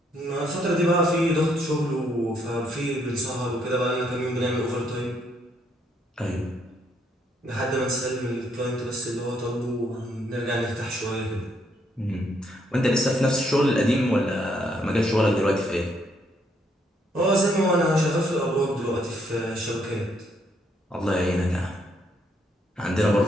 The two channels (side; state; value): both; normal; correlation 0.72